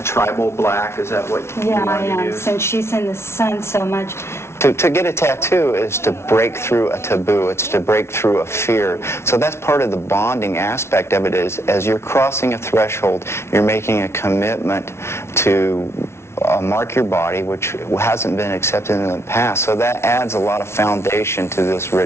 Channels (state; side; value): late; right; 0.13 ms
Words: tribal black. Is that what you Yeah, want I to am, use? since she's in the sun so much. To get a tattoo is to break through a taboo. It's to break through a fear. So that's part of the bonding aspect of it is as you're crossing a threshold, you're making a commitment to mark your body, which hasn't been accepted in the past. So that adds a lot of foundation to this